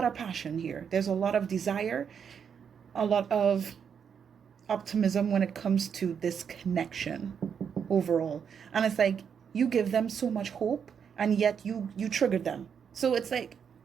of passion here. There's a lot of desire, a lot of optimism when it comes to this connection overall. And it's like, you give them so much hope, and yet you triggered them. So it's like,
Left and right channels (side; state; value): left; quieter; 7.3 dB